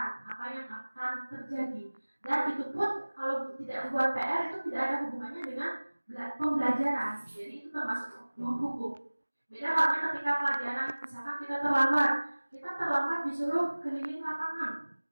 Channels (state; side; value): inverted; both; correlation -1.00